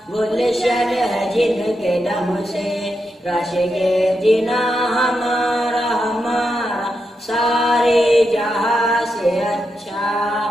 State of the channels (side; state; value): both; normal; correlation 0.85